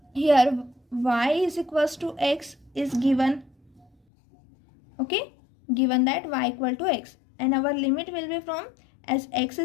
here y is equals to x is given. Okay, given that y equal to x, and our limit will be from, as x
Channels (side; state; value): right; drops out; at 3.9 s